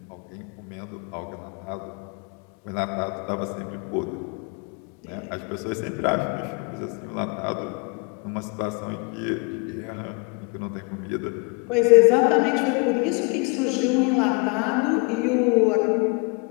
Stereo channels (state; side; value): quieter; right; 31.9 dB